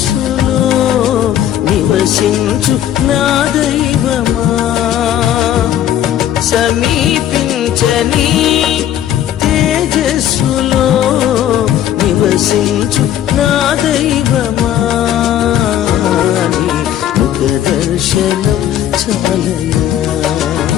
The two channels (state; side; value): quieter; right; 11.2 dB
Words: నివసించు నా దైవమా సమీపించని తేజస్సులో నివసించు నా దైవమా ముఖ దర్శనం చాలయా